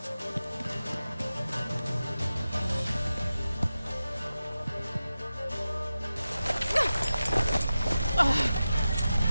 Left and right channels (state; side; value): inverted; both; correlation -0.93